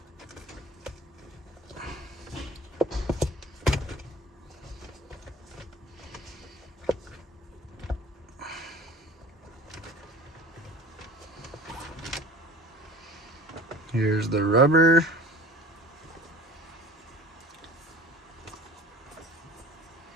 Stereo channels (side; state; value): both; normal; correlation 0.43